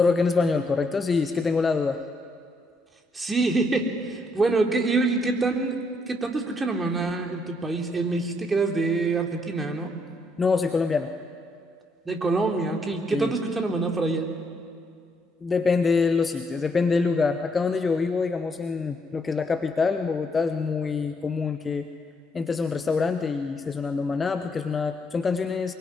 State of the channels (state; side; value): normal; both; correlation 0.74